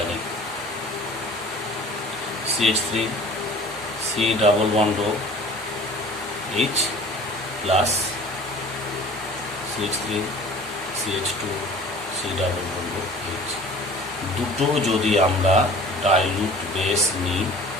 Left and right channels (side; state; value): both; normal; correlation 0.45